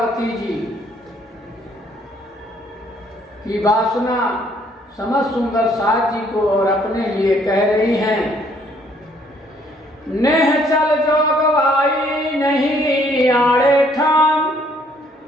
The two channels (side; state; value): both; normal; correlation 0.65